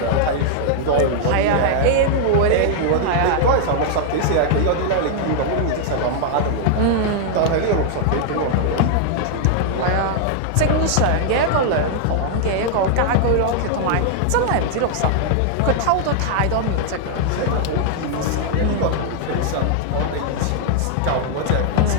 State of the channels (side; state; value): both; different; correlation -0.01